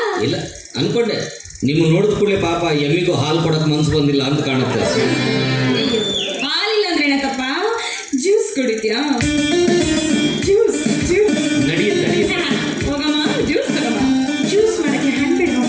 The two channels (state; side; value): identical; both; correlation 1.00